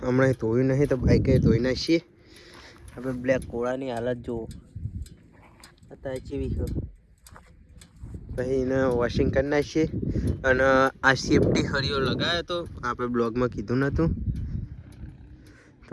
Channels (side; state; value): both; identical; correlation 1.00